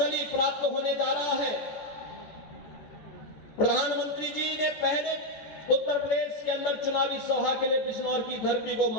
प्राप्त होने जा रहा है, प्रधानमंत्री जी ने पहले उत्तर प्रदेश के अंदर चुनावी सभा के लिए बिजनौर की धरती को,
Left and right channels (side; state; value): right; late; 14 ms